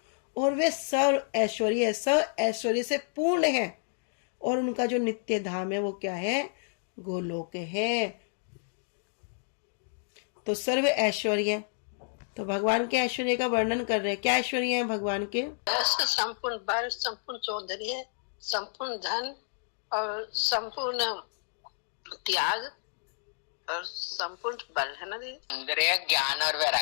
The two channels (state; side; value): silent; right; digital silence